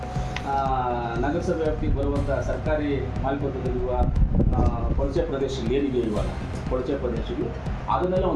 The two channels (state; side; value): identical; both; correlation 1.00